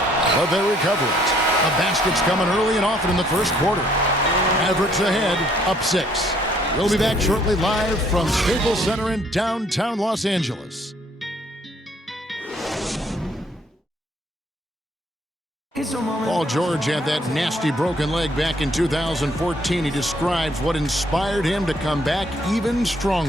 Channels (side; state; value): both; normal; correlation 0.64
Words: But they recover it. The basket's coming early and often in the first quarter. Mavericks ahead, up 6. We'll be back shortly live from Staples Center in downtown Los Angeles. Paul George had that nasty broken leg back in 2014. He describes what inspired him to come back even